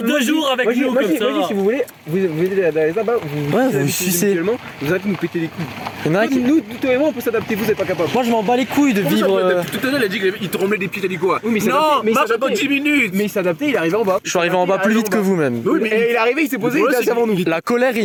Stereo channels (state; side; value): identical; both; correlation 1.00